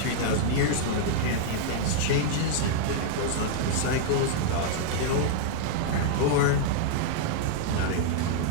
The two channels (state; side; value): different; both; correlation -0.01